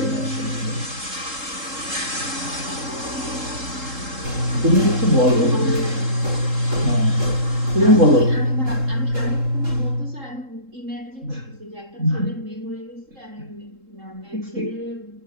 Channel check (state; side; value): late; left; 3.7 ms